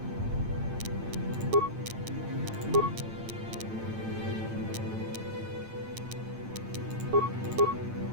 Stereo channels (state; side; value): late; left; 8.9 ms